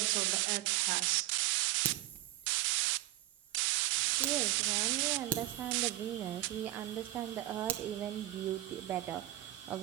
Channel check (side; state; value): left; quieter; 15.7 dB